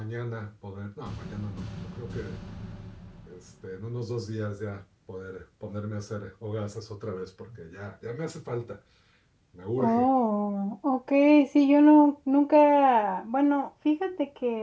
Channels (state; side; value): identical; both; correlation 1.00